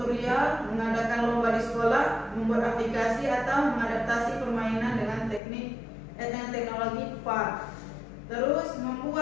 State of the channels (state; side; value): drops out; right; at 5.4 s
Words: mengadakan lomba di sekolah, membuat aplikasi atau mengadaptasi permainan dengan dengan teknologi VAR. Terus